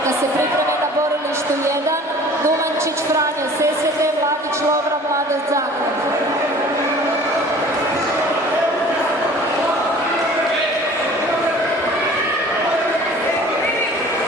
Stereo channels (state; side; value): normal; both; correlation 0.47